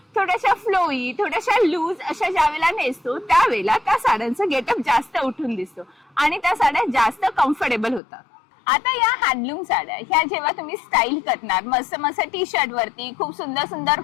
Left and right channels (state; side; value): drops out; right; at 8.0 s